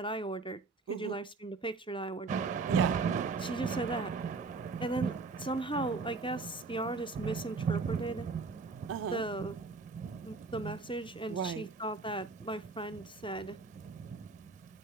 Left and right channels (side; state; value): left; quieter; 4.2 dB